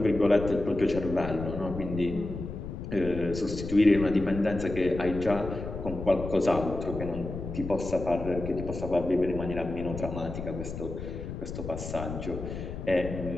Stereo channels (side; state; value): left; noise; rumble, 7 dB below the sound